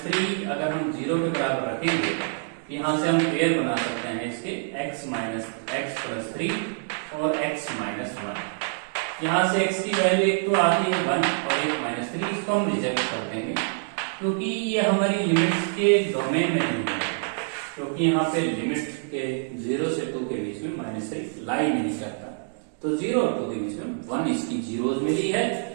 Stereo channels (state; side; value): silent; left; digital silence